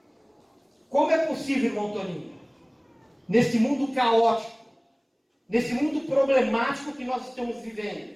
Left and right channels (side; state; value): both; identical; correlation 1.00